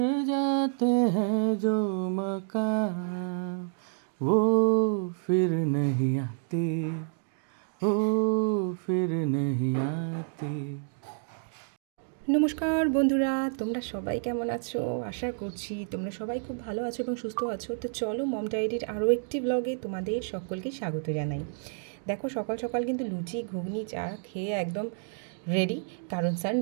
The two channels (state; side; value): silent; left; digital silence